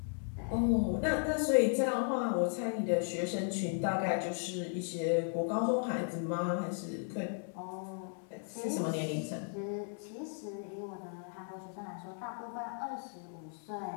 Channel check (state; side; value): silent; right; 54 dB below the other